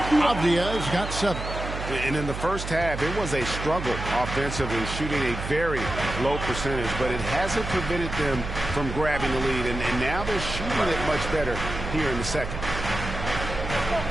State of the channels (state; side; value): noise; right; hum, 7 dB below the sound